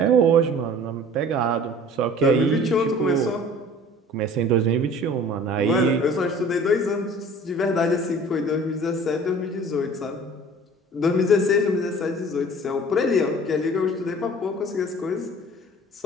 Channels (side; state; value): both; normal; correlation 0.46